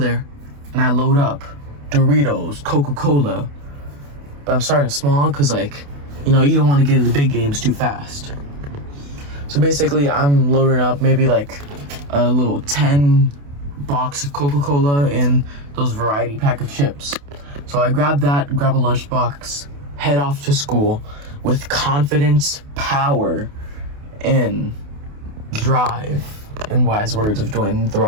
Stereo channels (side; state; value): left; late; 28 ms